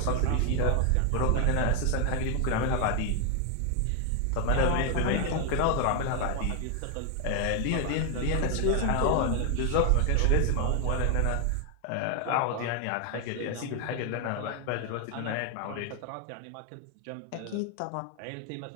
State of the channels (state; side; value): different; both; correlation 0.00